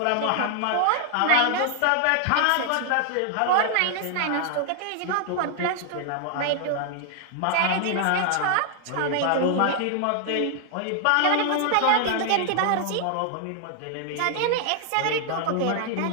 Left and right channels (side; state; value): both; different; correlation 0.00